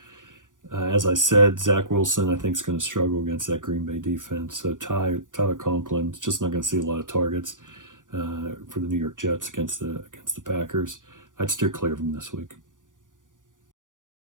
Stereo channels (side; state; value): left; late; 0.88 ms